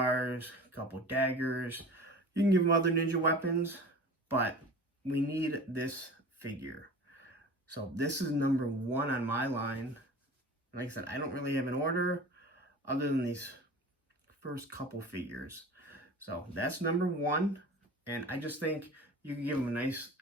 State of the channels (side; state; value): both; normal; correlation 0.38